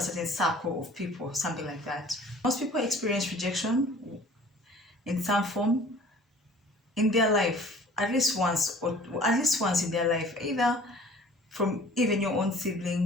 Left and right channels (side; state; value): both; normal; correlation 0.49